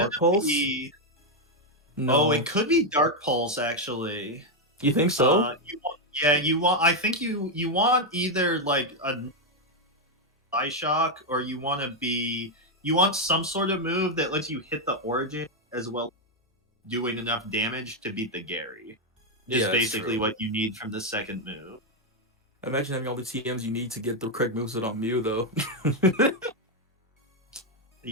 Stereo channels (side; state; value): both; normal; correlation 0.02